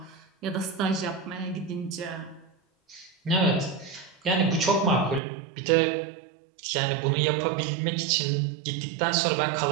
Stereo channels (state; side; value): drops out; left; at 5.2 s